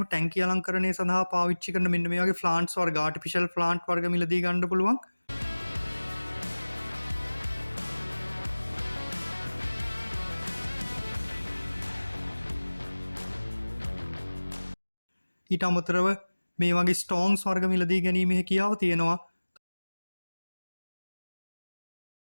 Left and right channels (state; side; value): inverted; both; correlation -1.00